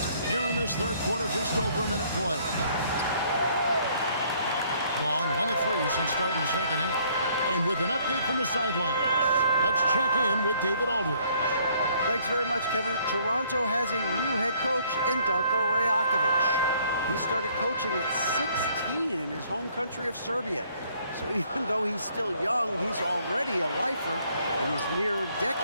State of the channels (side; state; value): both; inverted; correlation -0.63